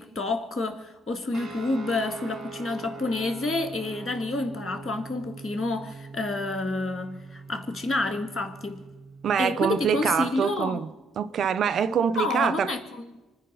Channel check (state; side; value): normal; both; correlation 0.69